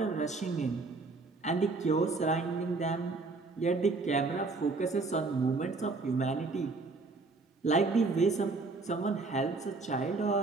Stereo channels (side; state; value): left; quieter; 3.8 dB